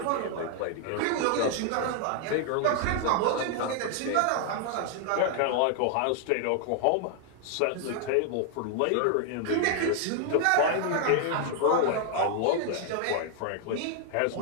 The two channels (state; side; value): different; both; correlation 0.00